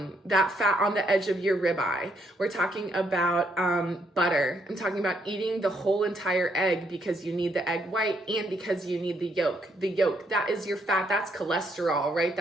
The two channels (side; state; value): both; normal; correlation 0.73